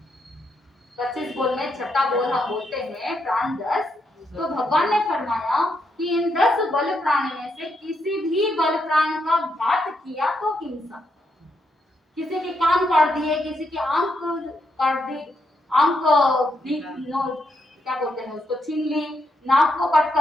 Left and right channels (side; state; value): both; normal; correlation 0.80